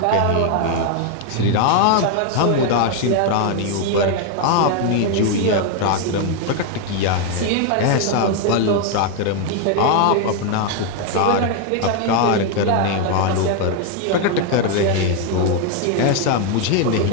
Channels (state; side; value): different; both; correlation 0.01